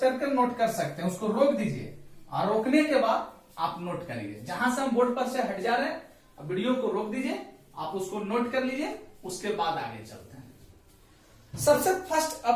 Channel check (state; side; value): identical; both; correlation 1.00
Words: करके नोट कर सकते हैं, उसको रोक दीजिए और रोकने के बाद आप नोट करिए। जहां से हम बोर्ड पर से हट जा रहे हैं, अब वीडियो को रोक दीजिए, आप उसको नोट कर लीजिए, उसके बाद आगे चलते हैं। सबसे फर्स्ट